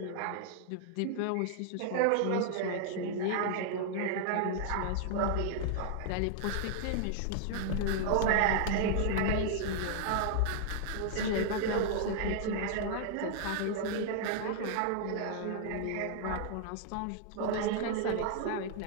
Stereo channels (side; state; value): both; different; correlation 0.00